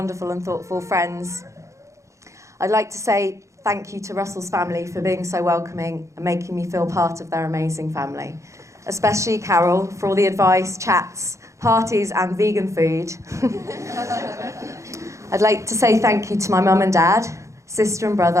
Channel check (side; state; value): left; late; 0.15 ms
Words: and thoughtful friends. I'd like to say thank you to Russell's family for being so welcoming and making me feel part of their amazing family. Especially Carol for all the advice, chats, parties and vegan food. I'd like to say thank you to my mum and dad, sister and